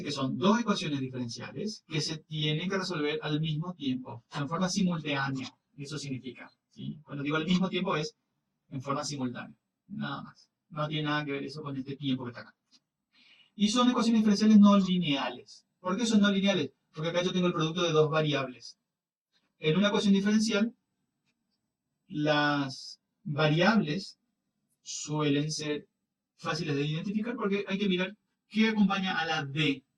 que son dos ecuaciones diferenciales que se tienen que resolver al mismo tiempo, en forma simultánea. Eso significa, ¿sí? Cuando digo al mismo tiempo es en forma simultánea, nada más. No tiene nada que ver eso con este tiempo que está acá. Y son ecuaciones diferenciales no lineales. ¿Por qué son no lineales? Porque acá yo tengo el producto de dos variables. En una ecuación diferencial, las variables suelen ser fáciles de identificar porque hay que mirar qué acompaña a la D.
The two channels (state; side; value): identical; both; correlation 1.00